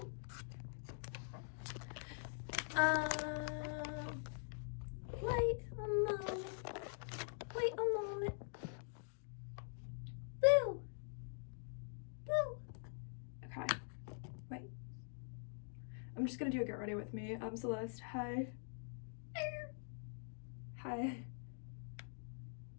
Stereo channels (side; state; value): right; silent; digital silence